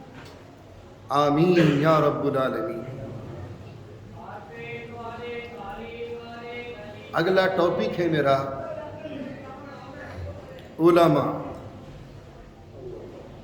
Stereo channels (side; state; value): both; identical; correlation 1.00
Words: آمین یا رب العالمین۔ اگلا ٹاپک ہے میرا علماء۔